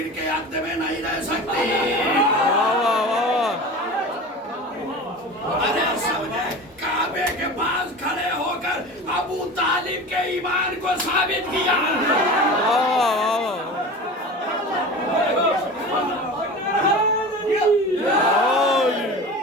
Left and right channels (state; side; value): normal; both; correlation 0.33